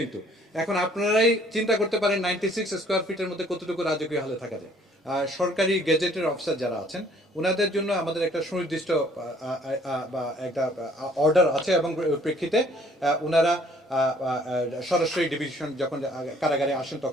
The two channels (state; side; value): normal; both; correlation 0.59